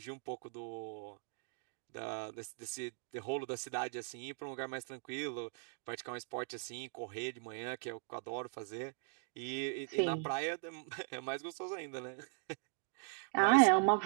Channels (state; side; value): silent; left; 51 dB below the other